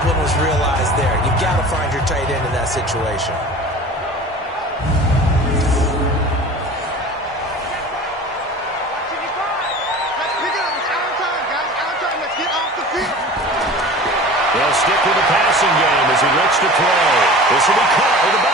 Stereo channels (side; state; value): both; normal; correlation 0.39